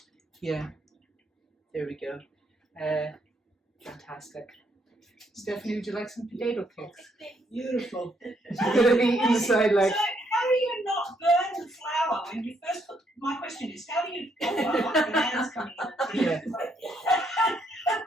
yeah, there we go. Fantastic. Stephanie, would you like some potato cakes? Beautiful. Inside, like. So how do you not burn the flour when you first put? My question is, how do you? The hands coming in. Yeah.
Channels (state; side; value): normal; both; correlation 0.73